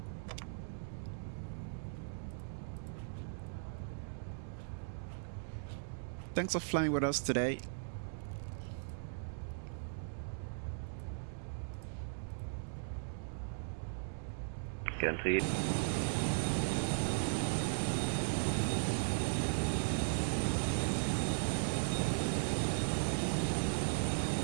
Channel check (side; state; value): left; silent; digital silence